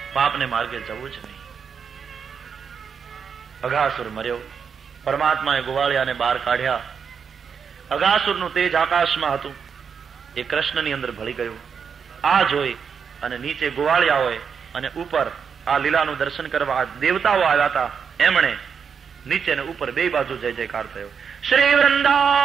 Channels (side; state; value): left; quieter; 6.6 dB